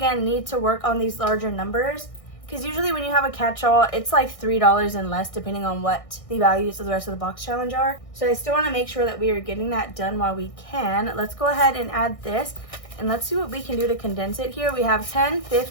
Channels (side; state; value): right; late; 1.6 ms